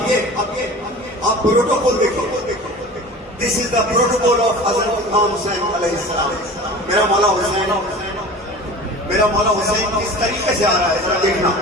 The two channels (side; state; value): both; normal; correlation 0.38